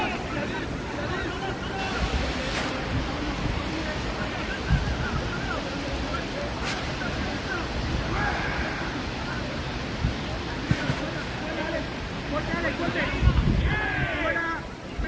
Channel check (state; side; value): identical; both; correlation 1.00